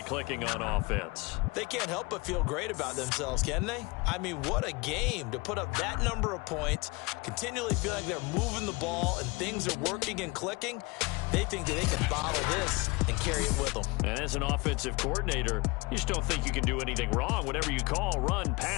clicking on offense. They can't help but feel great about themselves, can they? I mean, what a game to put up that number of points, continually feel like they're moving the ball and things are working and clicking. They think that they can bottle this and carry it with them. And as an offensive coordinator, you just don't think you can do anything wrong. Whatever you call, run,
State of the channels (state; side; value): quieter; right; 25.6 dB